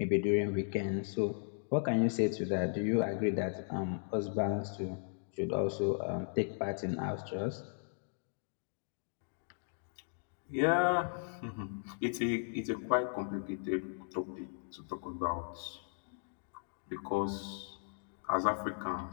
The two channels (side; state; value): right; silent; digital silence